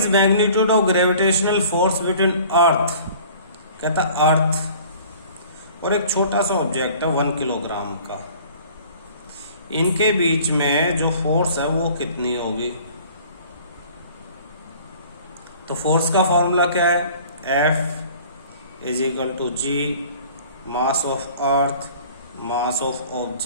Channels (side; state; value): both; inverted; correlation -0.49